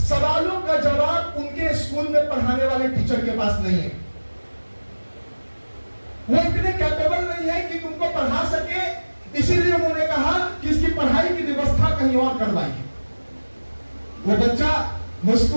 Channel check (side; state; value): both; inverted; correlation -1.00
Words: का जवाब उनके स्कूल में पढ़ाने वाले टीचर के पास नहीं है। वो इतने कैपेबल नहीं है कि तुमको पढ़ा सके, इसीलिए उन्होंने कहा कि इसकी पढ़ाई की व्यवस्था कहीं और करवाइए। वो बच्चा